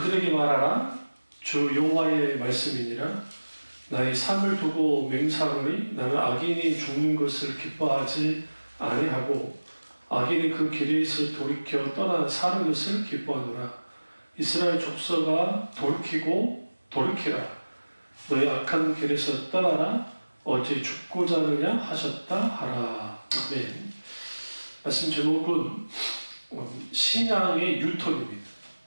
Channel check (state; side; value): inverted; both; correlation -1.00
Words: 말하라. 주 여호와의 말씀이니라. 나의 삶을 두고 맹세하노니 나는 악인이 죽는 것을 기뻐하지 아니하고 악인이 그 길에서 돌이켜 떠나 사는 것을 기뻐하노라. 이스라엘 족속아 돌이키라. 너의 악한 길에서 떠나라. 어찌 죽고자 하느냐 하셨다 하라. 아멘. 말씀 제목은 신앙의 유턴입니다.